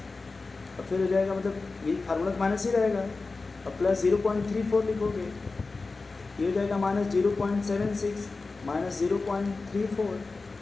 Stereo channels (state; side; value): quieter; right; 3.8 dB